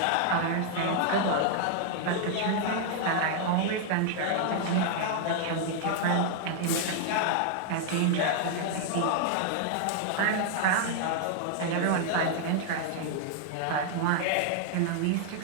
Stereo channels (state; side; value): different; both; correlation -0.01